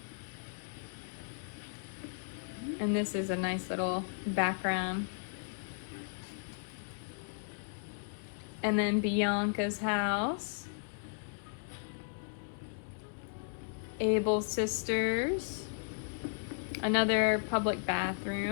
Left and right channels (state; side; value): silent; right; digital silence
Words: And this is a nice little background. And then Bianca's house. Abel's sisters. Another public